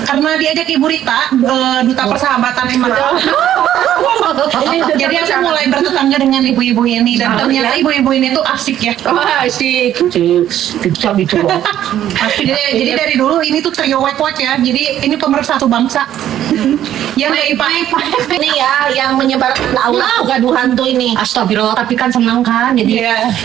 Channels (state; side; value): quieter; left; 11.5 dB